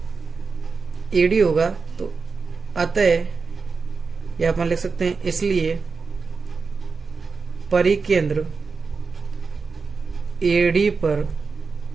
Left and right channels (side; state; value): left; quieter; 4.7 dB